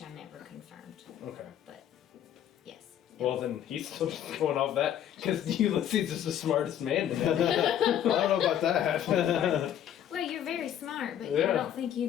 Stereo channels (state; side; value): quieter; right; 10.4 dB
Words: I never confirmed. Okay. But yes. Well, then he's still just going off that because Ulysses is the smartest man in that. I don't know about that. Well, you're very smart. smart, but Yeah. I don't think you